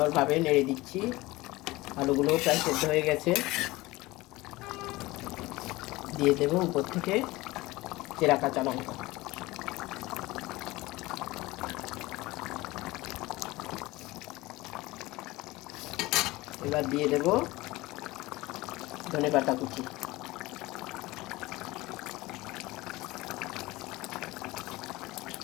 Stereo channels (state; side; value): quieter; right; 20.2 dB